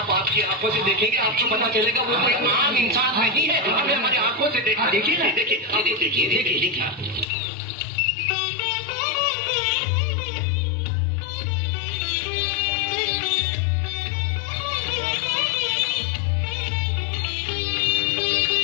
आपकी आंखों से देखेंगे, आपको पता चलेगा वो कोई आम इंसान नहीं है. हमें हमारी आंखों से देखा. देखिए ना. देखिए.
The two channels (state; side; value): drops out; right; at 7.3 s